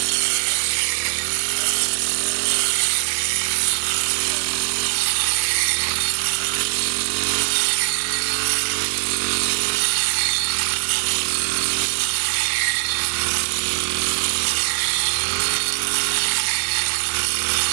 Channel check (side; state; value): left; silent; digital silence